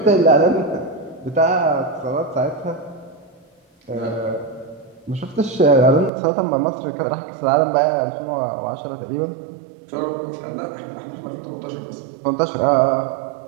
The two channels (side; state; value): left; drops out; at 6.1 s